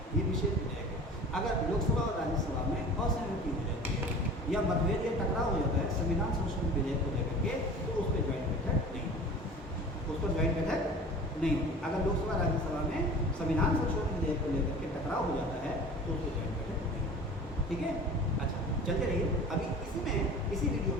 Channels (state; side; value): normal; both; correlation 0.41